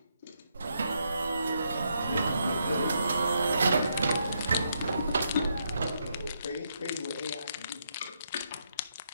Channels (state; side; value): inverted; both; correlation -0.78